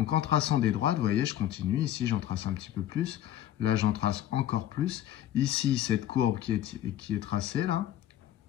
en traçant des droites, vous voyez, je continue. Ici, j'en trace un petit peu plus. Là, j'en trace encore plus. Ici, cette courbe qui est tracée, là,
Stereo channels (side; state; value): right; quieter; 12.1 dB